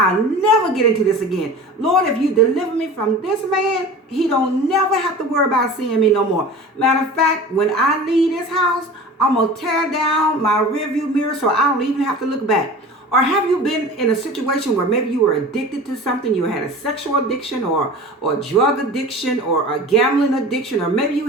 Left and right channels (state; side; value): normal; both; correlation 0.37